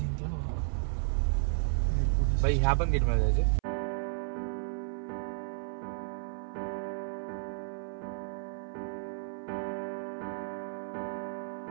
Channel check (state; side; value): silent; left; 56 dB below the other